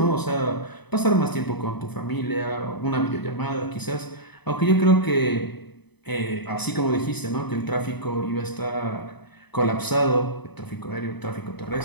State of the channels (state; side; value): late; right; 0.99 ms